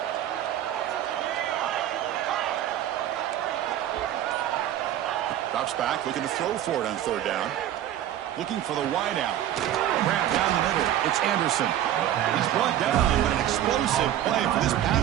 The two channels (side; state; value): left; quieter; 11.8 dB